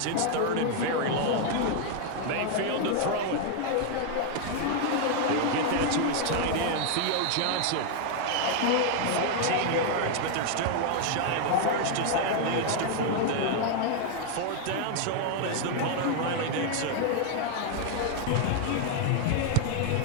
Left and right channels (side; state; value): both; different; correlation 0.00